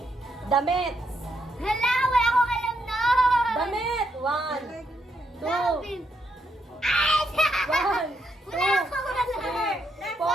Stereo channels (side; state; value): both; normal; correlation 0.79